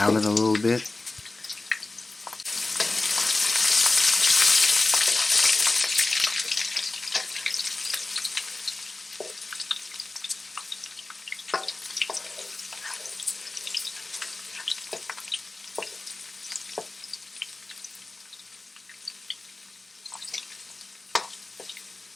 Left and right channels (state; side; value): quieter; right; 3.1 dB